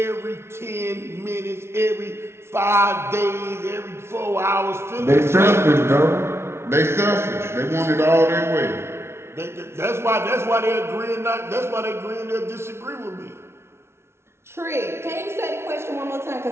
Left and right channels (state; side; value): late; left; 0.12 ms